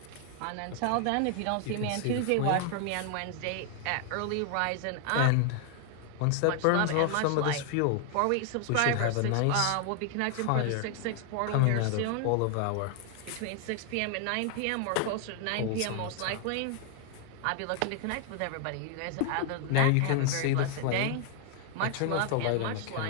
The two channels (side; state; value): both; different; correlation 0.00